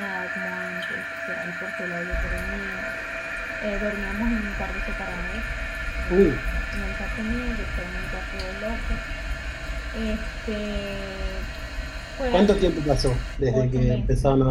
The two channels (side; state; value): both; identical; correlation 1.00